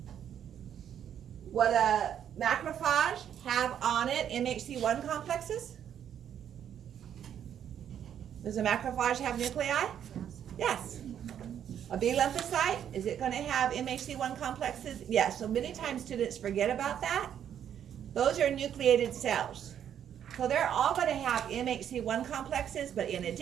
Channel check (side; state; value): left; quieter; 9.4 dB